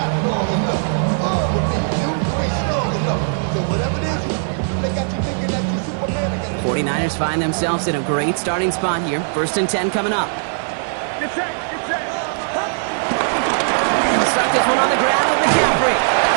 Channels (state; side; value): silent; left; digital silence